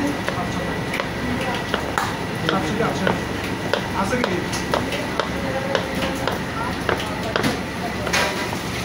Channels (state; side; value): identical; both; correlation 1.00